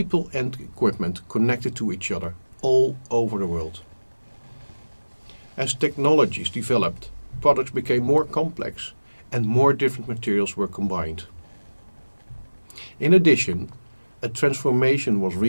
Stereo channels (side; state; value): both; inverted; correlation -1.00